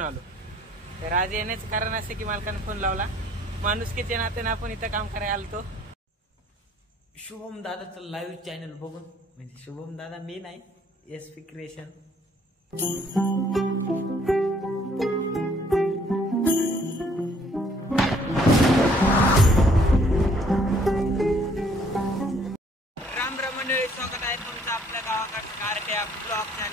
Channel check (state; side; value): normal; both; correlation 0.62